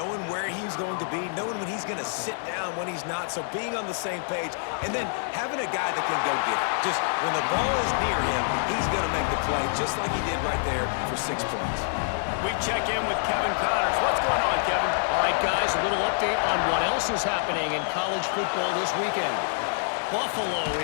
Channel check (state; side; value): silent; right; digital silence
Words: where he's going to be, knowing when he's going to sit down, when he's not. So being on the same page, and then having a guy that can go get it. Just when the ball is near him, he's going to make the play, just like he did right there for 6 points. We check in with Kevin Connors. What's going on, Kevin? All right, guys, a little update on what else is happening in college football this weekend. Buffalo